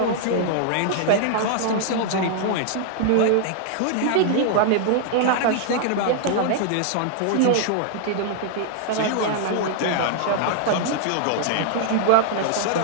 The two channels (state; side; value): different; both; correlation -0.01